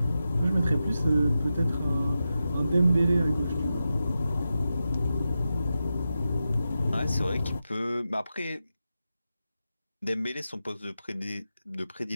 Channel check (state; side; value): inverted; both; correlation -0.90